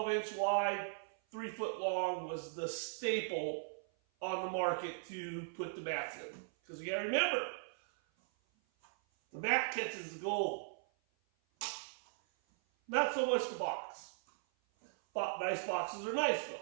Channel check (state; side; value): silent; left; 52 dB below the other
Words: inch wide, 3 foot long was the staple on the market to put the mats in. Because you gotta remember, the mat catches the gold. Not so much the box. Nice boxes are nice